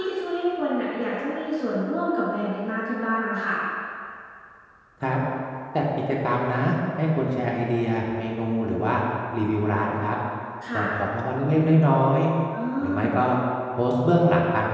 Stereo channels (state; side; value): identical; both; correlation 1.00